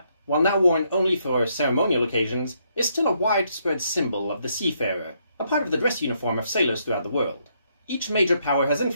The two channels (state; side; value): inverted; both; correlation -0.74